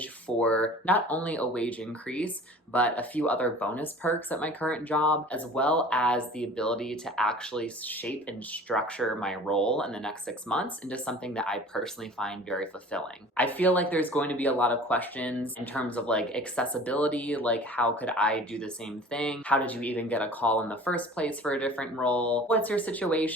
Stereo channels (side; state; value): both; normal; correlation 0.44